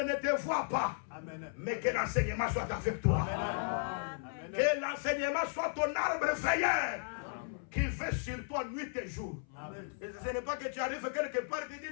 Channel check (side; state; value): right; silent; 54 dB below the other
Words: te voit pas, mais que l'enseignement soit avec toi. Que l'enseignement soit ton arbre veilleur qui veille sur toi nuit et jour. Et ce n'est pas que tu arrives quelque part et tu